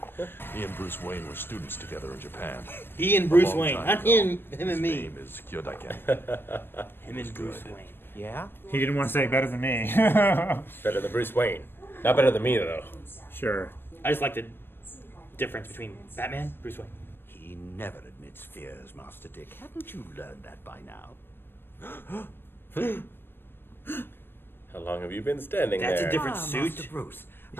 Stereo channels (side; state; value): right; late; 0.10 ms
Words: He and Bruce Wayne were students together in Japan. He and A Bruce long Wayne. time Not ago. him and His me. name is Kyodaken. Him and Bruce Wayne. Yeah? He didn't want to say better than me. Better than Bruce Wayne. Not better than me, though. Sure. I just like the difference between Batman, Bruce Wayne. He never admits fears, Master Dick. Haven't you learned that by now? How long have you been standing That's there? a different Master suit. Bruce.